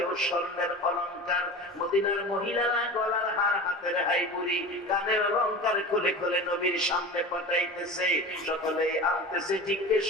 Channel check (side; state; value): both; normal; correlation 0.32